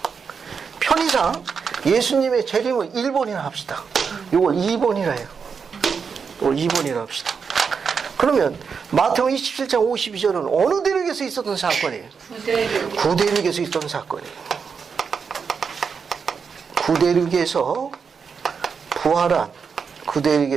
편의상 예수님의 재림을 1번이나 합시다. 이걸 2번이라 해요. 이걸 2번이라 합시다. 그러면 마태복음 27장 52절은 어느 대륙에서 있었던 사건이에요? 구대륙에서 있었던 사건이에요. 구대륙에서 부활한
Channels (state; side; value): quieter; left; 6.0 dB